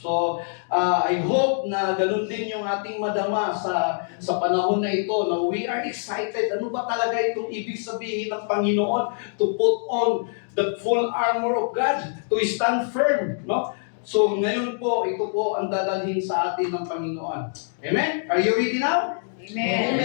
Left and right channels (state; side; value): silent; right; digital silence